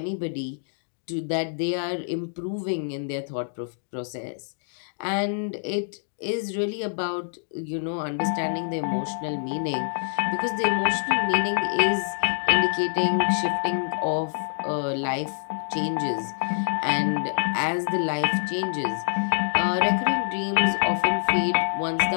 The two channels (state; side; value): silent; right; digital silence